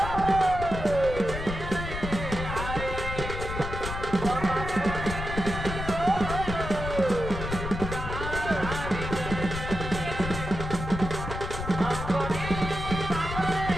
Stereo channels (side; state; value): left; noise; rumble, 6 dB below the sound